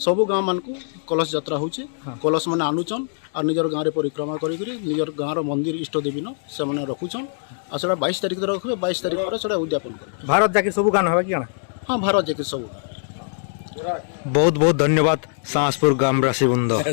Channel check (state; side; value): silent; right; digital silence